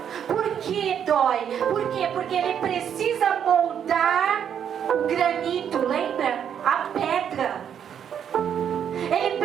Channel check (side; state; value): left; quieter; 8.6 dB